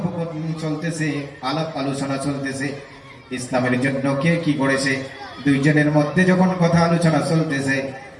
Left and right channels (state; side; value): identical; both; correlation 1.00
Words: চলতেছে, আলাপ আলোচনা চলতেছে, ইসলামের জন্য কে কি করেছে, দুইজনের মধ্যে যখন কথা আলোচনা চলতেছে,